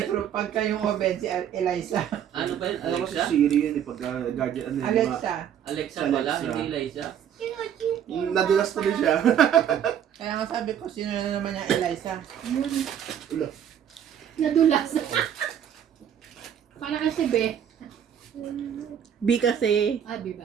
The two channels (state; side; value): quieter; left; 9.3 dB